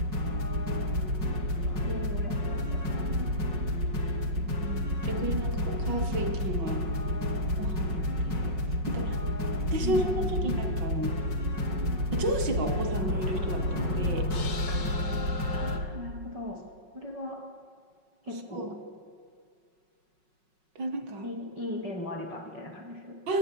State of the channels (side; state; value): left; late; 5.4 ms